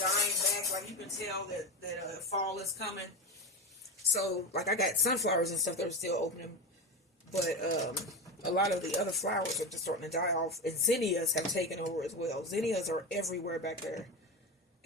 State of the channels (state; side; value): normal; both; correlation 0.20